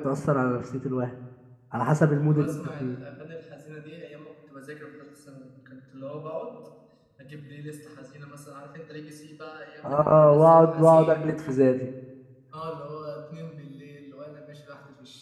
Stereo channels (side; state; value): both; identical; correlation 1.00